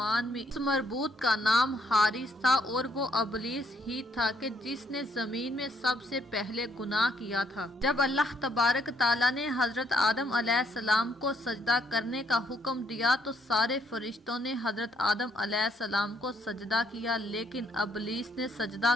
میں اس مربوط کا نام حارث تھا، اور وہ ابلیس ہی تھا کہ جس نے زمین میں سب سے پہلے گناہ کیا تھا۔ جب اللہ تبارک تعالیٰ نے حضرت آدم علیہ السلام کو سجدہ کرنے کا حکم دیا تو سارے فرشتوں نے حضرت آدم علیہ السلام کو سجدہ کیا، لیکن ابلیس نے سجدہ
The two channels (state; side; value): normal; both; correlation 0.71